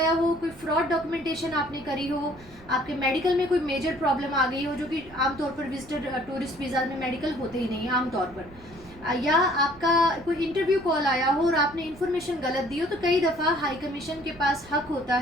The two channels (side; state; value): right; noise; rumble, 22 dB below the sound